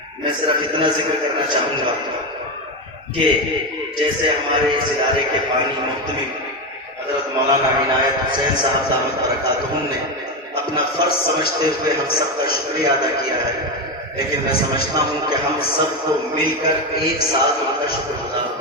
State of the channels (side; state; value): both; normal; correlation 0.13